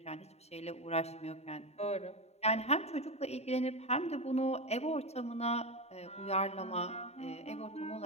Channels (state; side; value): late; right; 0.31 ms